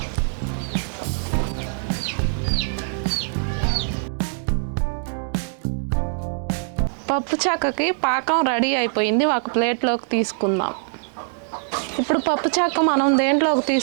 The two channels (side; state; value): left; silent; digital silence